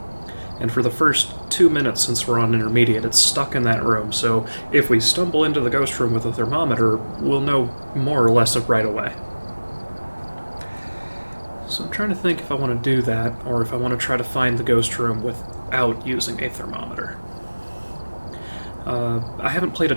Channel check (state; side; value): inverted; both; correlation -1.00